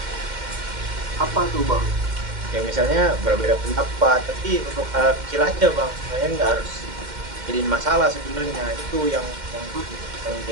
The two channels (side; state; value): left; late; 2.1 ms